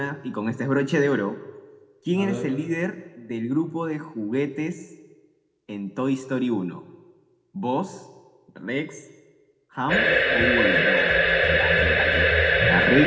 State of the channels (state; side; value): identical; both; correlation 1.00